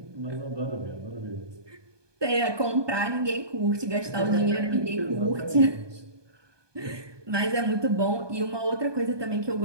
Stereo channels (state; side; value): late; left; 1.2 ms